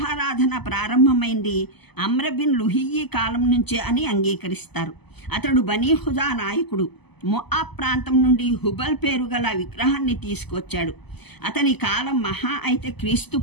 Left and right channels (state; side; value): late; right; 0.99 ms